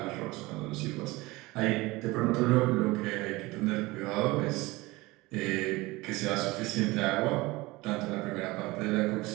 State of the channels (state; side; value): quieter; left; 21.4 dB